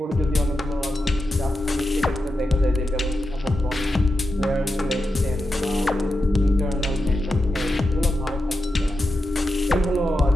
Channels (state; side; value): normal; both; correlation 0.90